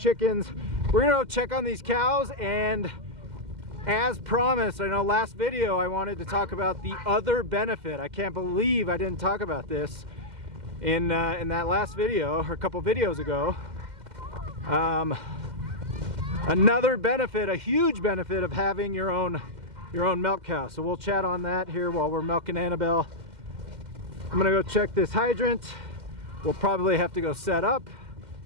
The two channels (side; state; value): left; late; 2.1 ms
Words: We're gonna go check on these cows, and as promised, I know last video I wanted to talk about the other benefit. I can't believe I didn't talk about this in that last video, or a couple videos ago. Another benefit, a huge benefit of having your own milk cow. So we'll chat on that here while we're milking Annabelle. I'm gonna go check this hydrant. We'll probably have to go set up,